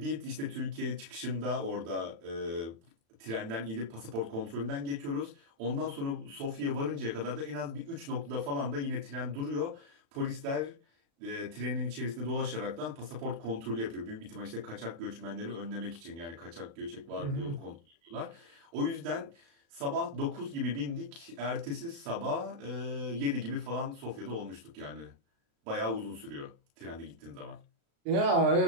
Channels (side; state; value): left; late; 36 ms